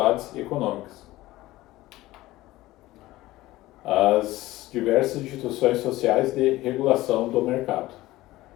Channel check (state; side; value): quieter; right; 17.4 dB